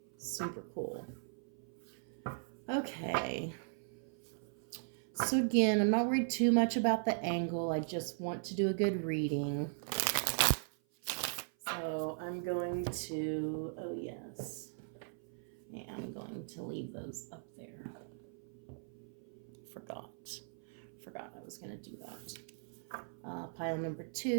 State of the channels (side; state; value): left; silent; 52 dB below the other